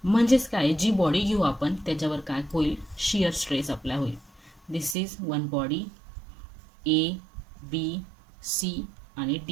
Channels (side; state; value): left; drops out; at 5.0 s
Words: म्हणजेच काय, जी बॉडी घेऊ आपण त्याच्यावर काय होईल, शिअर स्ट्रेस अप्लाय होईल. This is one body, A B C आणि